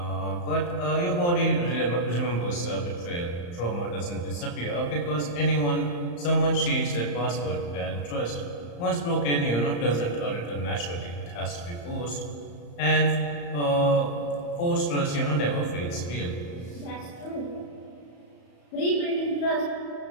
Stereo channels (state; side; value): late; right; 34 ms